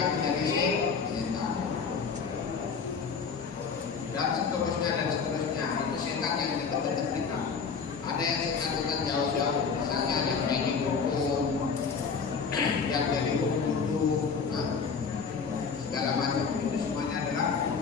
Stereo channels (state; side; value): quieter; right; 5.6 dB